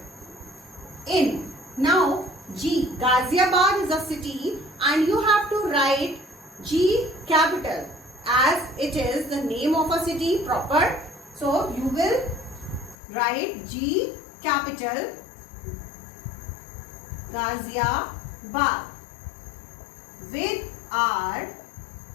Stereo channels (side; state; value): right; drops out; at 13.0 s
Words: in. Now, G. Ghaziabad is a city and you have to write G capital as it is the name of a city proper. So, you will write G capital Ghaziabad with our